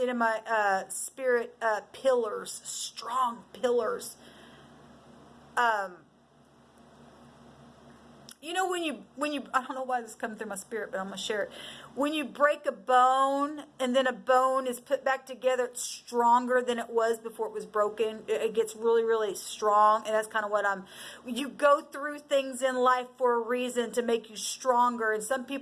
in my spirit pillars, strong pillars. You know, when you, I don't know why this is coming through my spirit, but I'm going to share it. When you break a bone, and then a bone is put back together, it's stronger than it was before it was broken. It gets really, really strong. And that's kind of what you go through things in life for a reason, to make you stronger. And some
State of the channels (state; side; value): identical; both; correlation 1.00